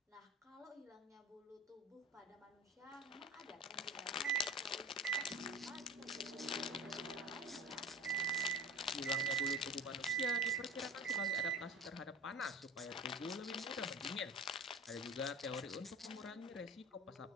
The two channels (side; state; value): both; normal; correlation 0.37